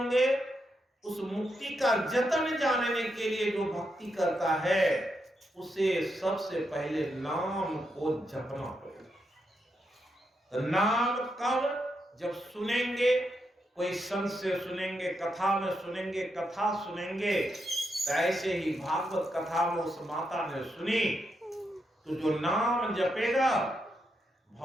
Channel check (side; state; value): both; normal; correlation 0.83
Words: उस मुक्ति का जतन जानने के लिए जो भक्ति करता है, उसे सबसे पहले नाम को जपना पड़ेगा। तो नाम कब? जब सुनेंगे, कोई संत से सुनेंगे, कथा में सुनेंगे, कथा सुनेंगे। तो ऐसे ही भागवत कथा में उस माता ने सुनी, तो जो नाम जपेगा